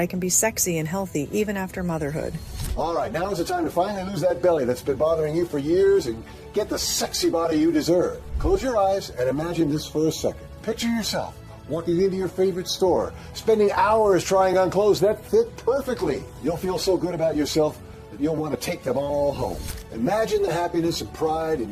can be sexy and healthy even after motherhood. All right, now is the time to finally lose that belly that's been bothering you for years and get the sexy body you deserve. Close your eyes and imagine this for a second. Picture yourself walking into your favorite store, spending hours trying on clothes that fit perfectly. You'll feel so good about yourself that you'll want to take them all home. Imagine the happiness and pride in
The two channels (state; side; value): identical; both; correlation 1.00